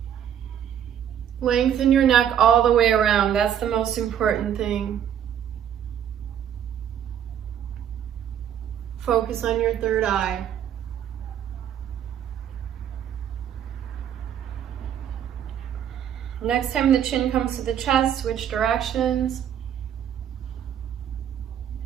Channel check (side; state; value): left; quieter; 9.5 dB